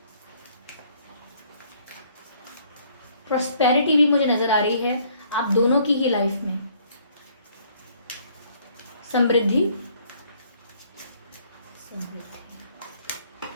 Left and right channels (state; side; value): inverted; both; correlation -0.63